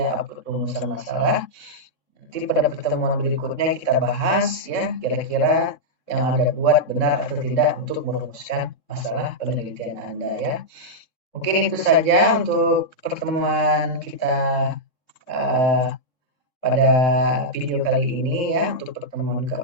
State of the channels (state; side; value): late; right; 3.6 ms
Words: upload rumusan masalah. Nanti pada pertemuan berikutnya kita bahas ya kira-kira yang Anda buat benar atau tidak untuk merumuskan masalah penelitian Anda ya. Mungkin itu saja untuk pertemuan kita pada video kali ini ya, untuk pertemuan